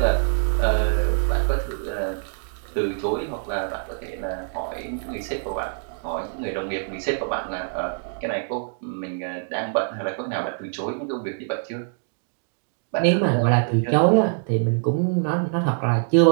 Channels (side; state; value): left; silent; digital silence